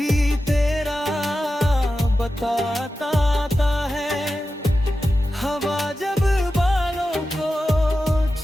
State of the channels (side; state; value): both; normal; correlation 0.92